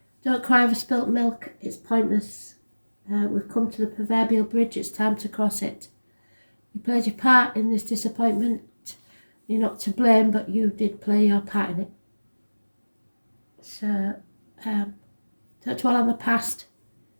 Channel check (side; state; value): both; inverted; correlation -1.00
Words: Don't cry over spilt milk, it's pointless. We've come to the proverbial bridge, it's time to cross it. You played your part in this disappointment. You're not to blame, but you did play your part in it. So, don't dwell on the past,